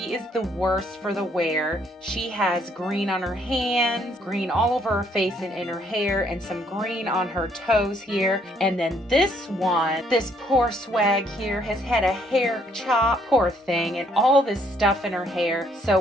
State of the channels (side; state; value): both; normal; correlation 0.67